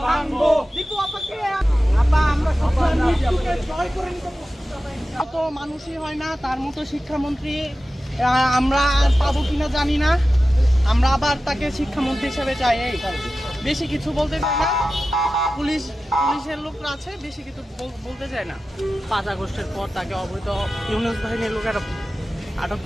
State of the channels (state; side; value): normal; both; correlation 0.94